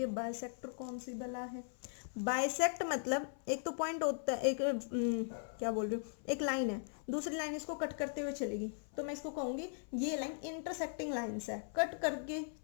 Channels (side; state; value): right; silent; 52 dB below the other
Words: बाइसेक्टर कौन सी बला है? बाइसेक्ट मतलब एक तो पॉइंट होता है, एक क्या बोल रही हूँ, एक लाइन है, दूसरी लाइन इसको कट करते हुए चलेगी, तो मैं इसको कहूंगी ये लाइन इंटरसेक्टिंग लाइंस है, कट करके